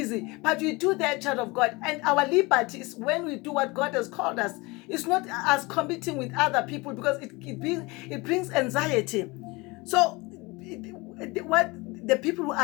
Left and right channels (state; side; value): quieter; right; 24.4 dB